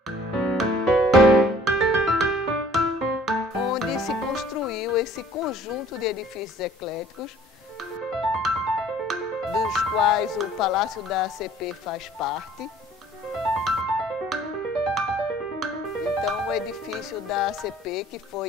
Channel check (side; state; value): both; normal; correlation 0.53